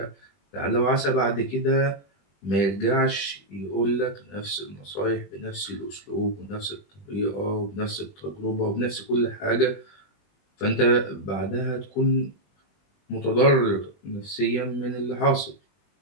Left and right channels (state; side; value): late; right; 20 ms